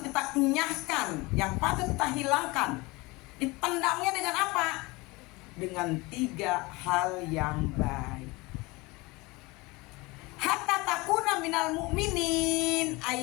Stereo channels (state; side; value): quieter; right; 23.7 dB